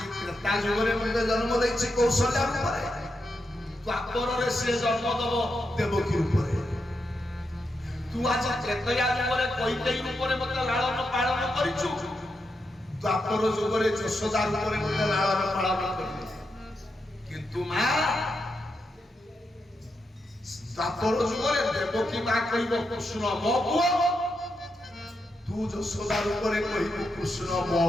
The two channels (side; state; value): both; normal; correlation 0.85